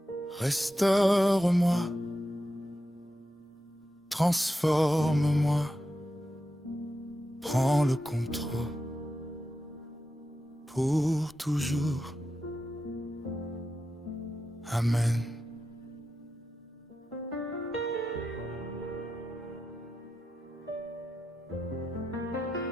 restaure-moi, transforme-moi, prends le contrôle pour toujours. Amen.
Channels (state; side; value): normal; both; correlation 0.89